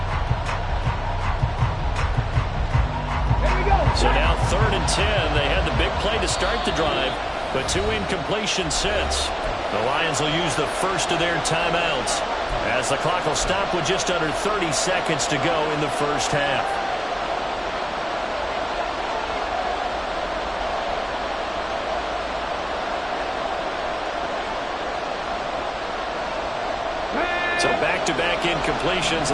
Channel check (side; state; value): both; identical; correlation 1.00